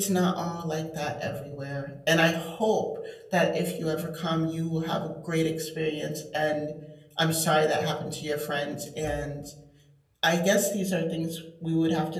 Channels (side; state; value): both; identical; correlation 1.00